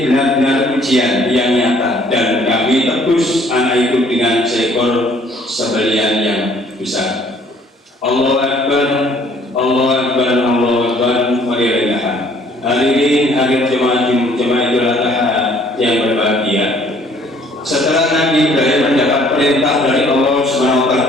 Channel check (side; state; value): both; normal; correlation 0.59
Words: benar-benar ujian yang nyata, dan kami tebus anak itu dengan seekor sembelihan yang besar. Allahu Akbar, Allahu Akbar, Allahu Akbar. Walillahilhamd. Hadirin hadirat jemaah Idul Adha yang berbahagia. Setelah Nabi Ibrahim mendapat perintah dari Allah Subhanahu wa taala